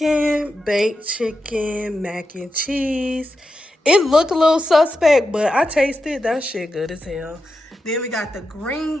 baked chicken, mac and cheese. It looked a little suspect, but I tasted that shit good as hell. Then we got the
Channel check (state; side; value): normal; both; correlation 0.88